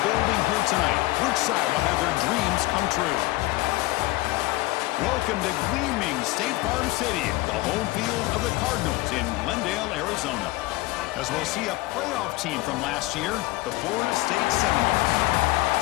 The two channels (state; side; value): quieter; right; 19.9 dB